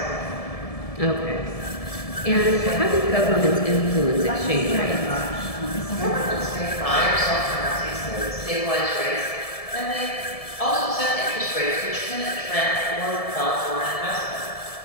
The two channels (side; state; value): right; late; 1.7 ms